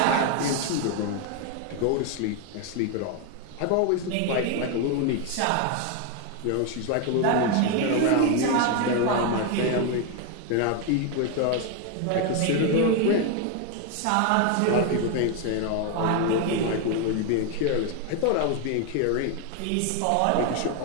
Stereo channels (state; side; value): different; both; correlation 0.01